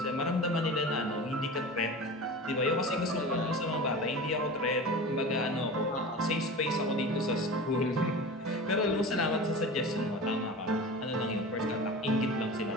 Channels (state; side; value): normal; both; correlation 0.32